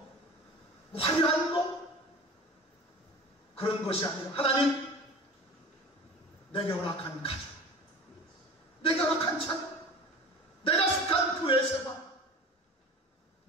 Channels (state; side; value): normal; both; correlation 0.37